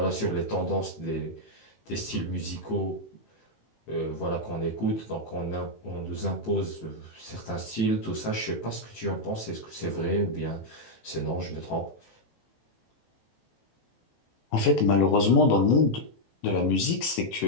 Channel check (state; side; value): late; right; 18 ms